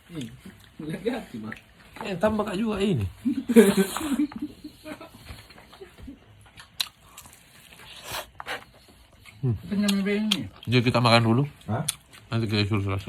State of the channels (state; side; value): identical; both; correlation 1.00